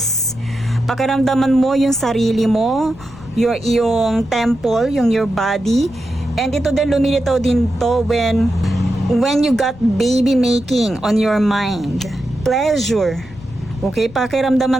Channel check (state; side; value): noise; left; rumble, 20 dB below the sound